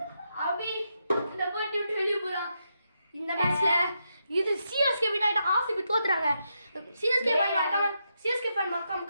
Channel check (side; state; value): both; inverted; correlation -0.83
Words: அபி இந்த போட்டி விட்டு வெளிய போறான் இந்த மேட்ச்ல இது சிஎஸ்கே வின் ஆயிட்டு ஆர்சிபி தோத்துறாங்க சிஎஸ்கே ஃபேன் மறக்காம